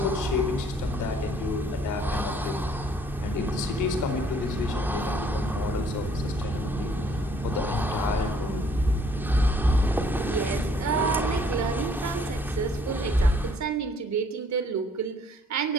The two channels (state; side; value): normal; both; correlation 0.61